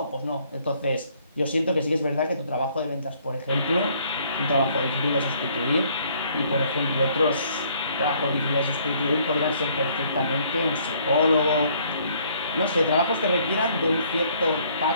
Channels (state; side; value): inverted; both; correlation -0.63